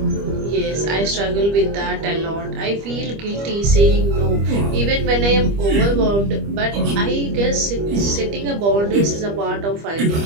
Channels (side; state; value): left; late; 25 ms